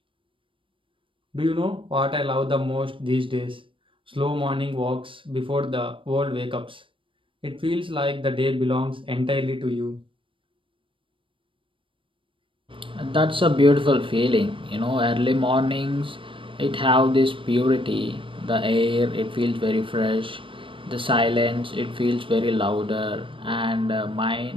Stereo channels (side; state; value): left; late; 0.25 ms